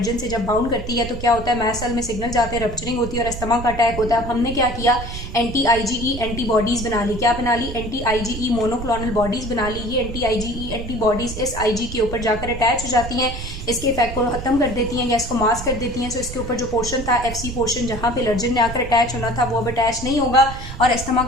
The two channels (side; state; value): right; noise; rumble, 9 dB below the sound